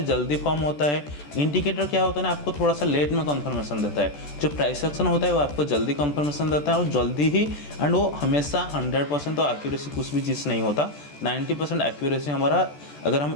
जल्दी फॉर्म होता है। इंडिकेटर क्या होता है ना, आपको थोड़ा सा लेट में कन्फर्मेशन देता है। जो प्राइस एक्शन होता है वो आपको जल्दी कन्फर्मेशन देता है और जल्दी ही, एंड वो हमेशा 100% तो एक्यूरेसी कुछ भी चीज़ नहीं होता। 90% एक्यूरेसी हमारा, अगर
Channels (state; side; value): late; right; 14 ms